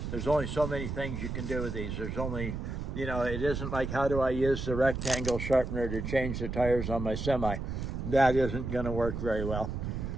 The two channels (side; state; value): right; noise; rumble, 4 dB below the sound